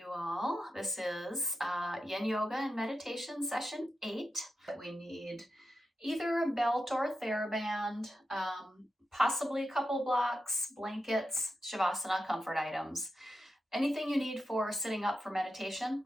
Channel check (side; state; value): both; normal; correlation 0.88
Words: all. This is Yin Yoga and Meditation Session 8. We need either a belt or a TheraBand, possibly a couple blocks, blankets, Shavasana comfort items. Anything you need for sitting up for meditation.